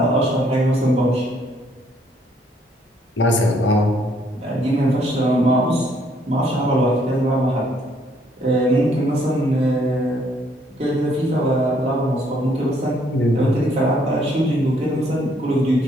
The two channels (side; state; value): both; normal; correlation 0.67